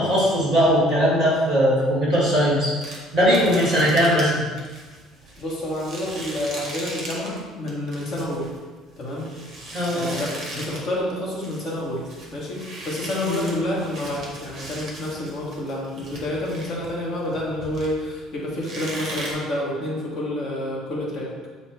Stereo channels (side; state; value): both; normal; correlation 0.58